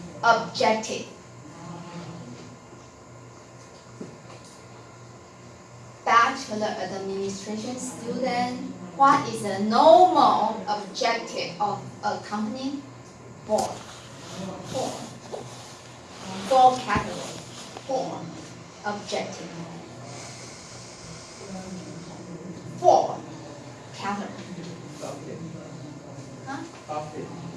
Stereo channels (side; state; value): both; identical; correlation 1.00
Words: objective. Bachelor administration student, what is the normal objective of a company? Four categories. Four objective. Four categories.